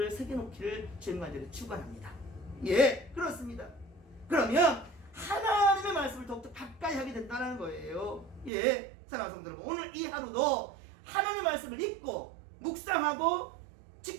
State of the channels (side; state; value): left; drops out; at 8.5 s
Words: 새겨놓기를 주님 간절히 축원합니다. 그렇습니다. 그러면 하나님의 말씀을 더욱더 가까이 하게 된다는 거예요. 사랑하는 성도 여러분, 오늘 이 하루도 하나님의 말씀을 읽고 묵상하고